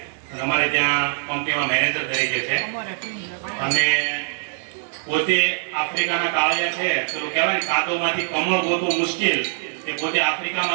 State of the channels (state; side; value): silent; left; digital silence